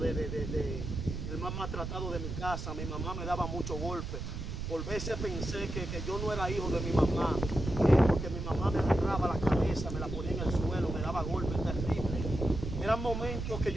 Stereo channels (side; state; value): right; noise; rumble, 5 dB below the sound